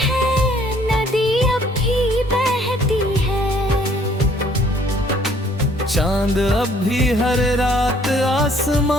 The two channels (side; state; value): both; normal; correlation 0.61